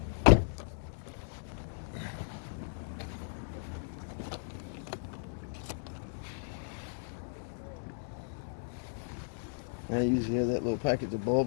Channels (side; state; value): right; silent; digital silence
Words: I usually have that little package of